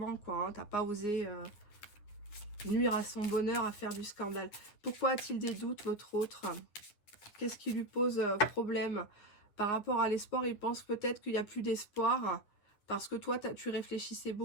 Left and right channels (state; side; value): late; right; 9.7 ms